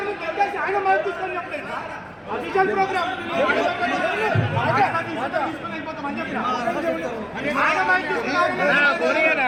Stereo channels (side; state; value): both; identical; correlation 1.00